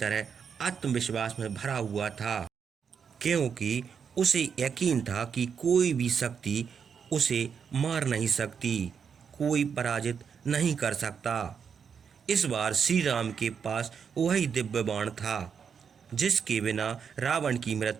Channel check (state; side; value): quieter; left; 6.8 dB